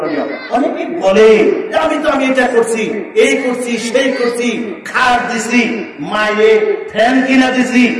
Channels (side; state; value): both; identical; correlation 1.00